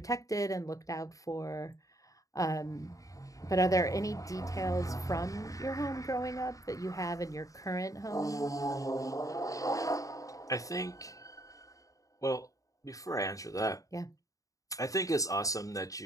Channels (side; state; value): right; late; 0.16 ms